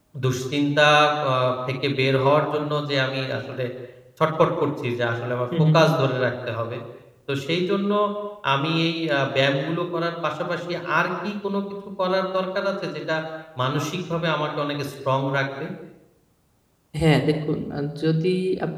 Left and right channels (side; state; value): both; identical; correlation 1.00